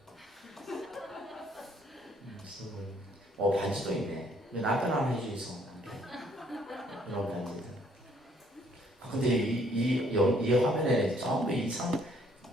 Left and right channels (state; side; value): normal; both; correlation 0.64